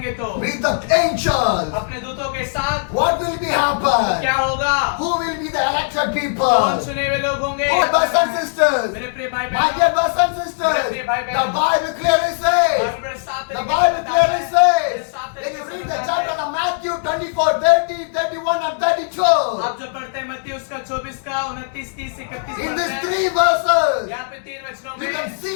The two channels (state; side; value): silent; right; digital silence